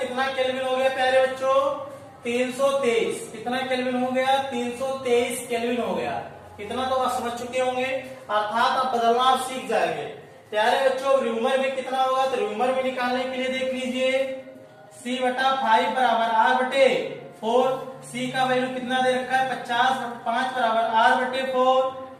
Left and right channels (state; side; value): identical; both; correlation 1.00